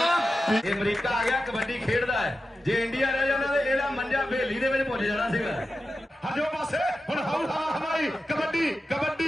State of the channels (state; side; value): normal; both; correlation 0.91